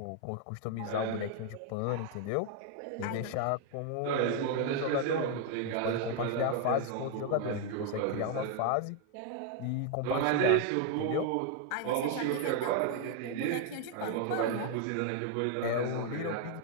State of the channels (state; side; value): different; both; correlation 0.00